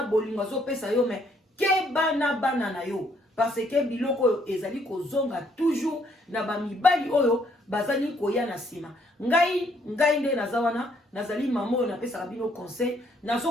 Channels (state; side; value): normal; both; correlation 0.68